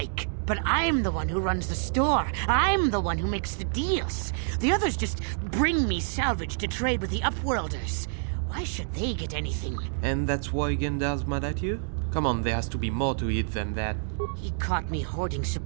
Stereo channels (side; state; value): left; silent; digital silence